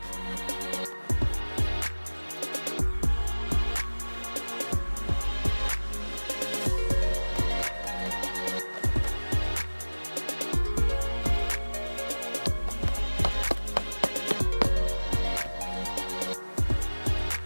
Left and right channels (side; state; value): both; inverted; correlation -1.00